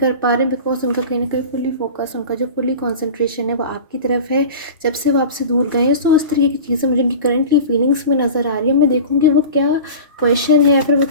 पा रहे हैं बिकॉज उनका कहीं ना कहीं फुली फोकस, उनका जो फुली कॉन्सेंट्रेशन है वो आपकी तरफ है जब से वो आपसे दूर गए हैं। सो इस तरीके की चीज़ें मुझे उनकी करंटली फीलिंग्स में नज़र आ रही है। मैं देखूँगी वो क्या क्वेश्चन है या फिर वो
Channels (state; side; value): inverted; both; correlation -0.34